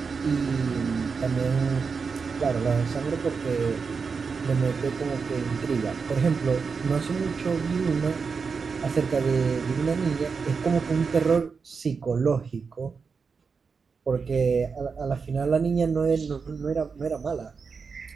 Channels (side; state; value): left; quieter; 5.3 dB